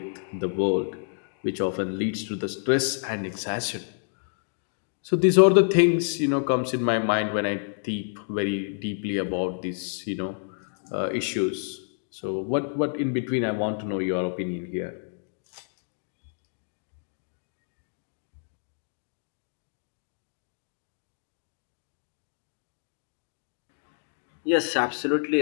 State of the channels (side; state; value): right; silent; digital silence